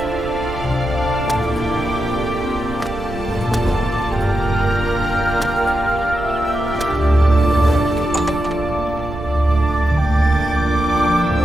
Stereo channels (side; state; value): right; noise; rumble, 13 dB below the sound